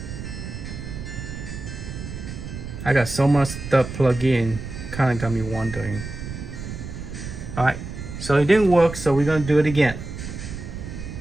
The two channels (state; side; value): noise; right; rumble, 9 dB below the sound